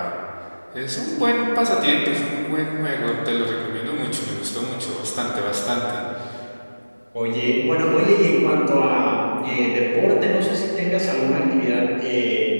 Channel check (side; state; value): both; inverted; correlation -1.00